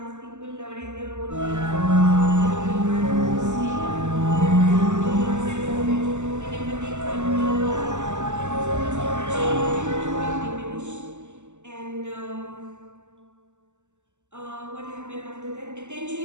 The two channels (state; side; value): late; left; 0.84 ms